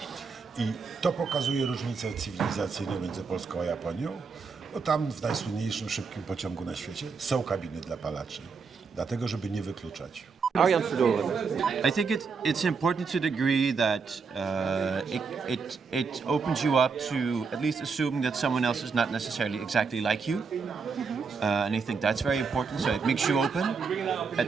I to pokazuje różnicę cywilizacyjną między Polską a Japonią, bo tam w najsłynniejszym szybkim pociągu na świecie są kabiny dla palaczy, dlatego żeby nie wykluczać. I think it's important to the degree that it opens you up to at least assuming that someone else is not necessarily exactly like you. And I think that's very important, so it makes you open.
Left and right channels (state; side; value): quieter; left; 5.1 dB